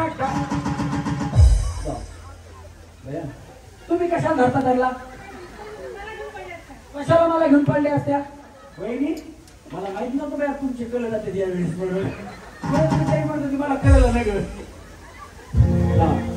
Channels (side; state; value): both; identical; correlation 1.00